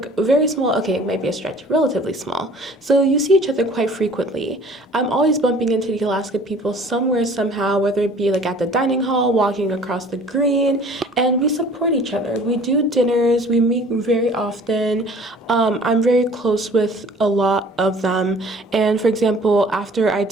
very small, okay, it might be a stretch, relatively small. So you see each other quite frequently. I'm always bumping into the Alaska people somewhere, somehow, whether it be at the dining hall, walking across the green, and we support each other. We do dinners, we meet very often. I'm very close with a lot of them. And for example, after I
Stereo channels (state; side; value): normal; both; correlation 0.50